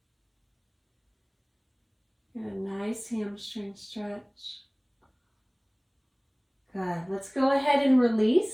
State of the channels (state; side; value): identical; both; correlation 1.00